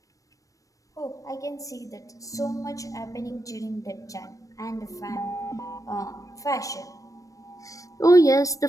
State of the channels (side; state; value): right; late; 0.16 ms